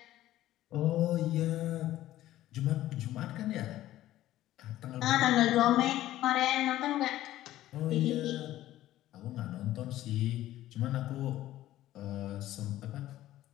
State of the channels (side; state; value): right; quieter; 14.3 dB